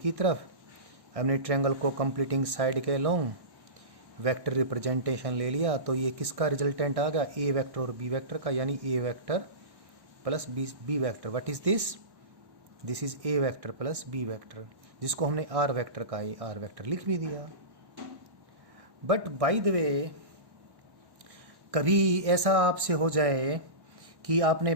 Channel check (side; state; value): left; late; 1.1 ms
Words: की तरफ हमने ट्रायंगल को कंप्लीटिंग साइड के लॉन्ग वेक्टर रिप्रेजेंटेशन ले लिया। तो ये किसका रिजल्टेंट आ गया? ए वेक्टर और बी वेक्टर का, यानी A vector plus B vector. What is this? This is A vector plus B vector, जिसको हमने आर वेक्टर का ए आर वेक्टर लिख भी दिया। बट बाय द वे, कभी ऐसा आपसे हो जाए कि आपने